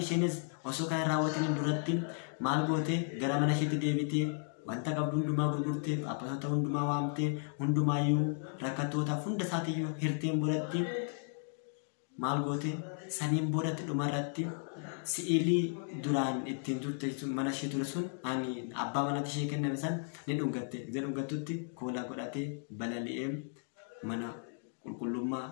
isheenis osoo kan raawwataniin duratti maal gootee gara mana isheetti deebitee wanta qabdu hundumaa gurgurtee abbootaa hundumaa waamtee hundumaayyuu rakkatootaaf hunda isaatiiyyuu hirteen boodatti maal goote saniin boodatti dhumarratti si'ilii duraan ittiin turte mana ishee ture sun ani abbaa manatti ishee kenname san ni dhungatte. Gizee dhungattutti koolaa godhatee balali'ee mana qulqullummaa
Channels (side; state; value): right; silent; 55 dB below the other